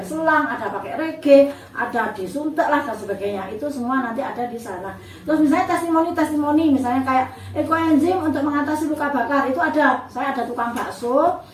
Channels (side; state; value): both; identical; correlation 1.00